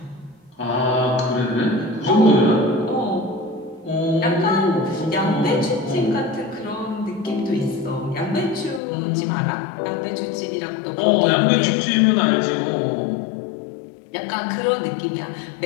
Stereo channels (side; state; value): right; drops out; at 8.8 s